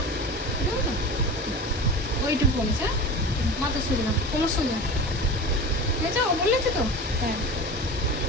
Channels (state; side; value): normal; both; correlation 0.32